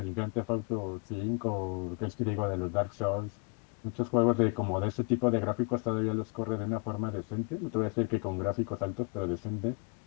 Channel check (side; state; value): right; quieter; 33.1 dB